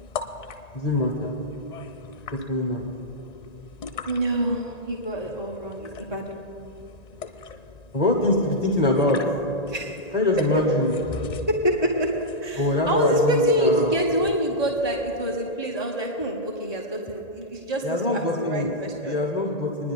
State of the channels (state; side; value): late; right; 1.8 ms